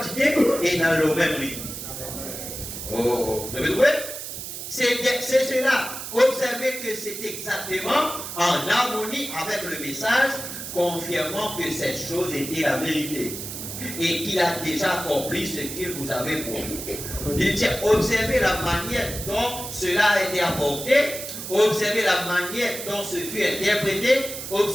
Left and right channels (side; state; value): right; noise; hiss, 8 dB below the sound